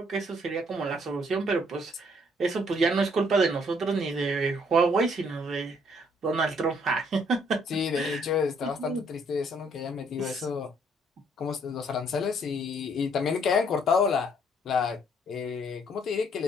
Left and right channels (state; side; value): normal; both; correlation 0.65